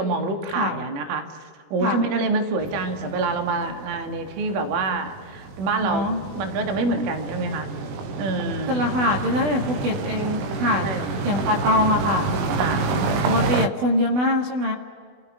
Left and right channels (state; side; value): late; left; 20 ms